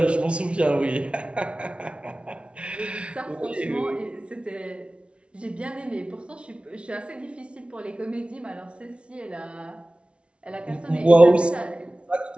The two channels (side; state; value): left; late; 0.059 ms